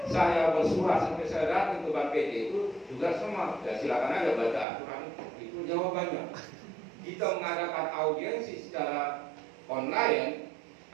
Saya bersurat sampai saya datang ke Bank PT itu juga sama. Ya, silakan aja baca aturan itu jawabannya. Kita mengadakan audiensi secara online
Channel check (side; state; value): left; drops out; at 4.7 s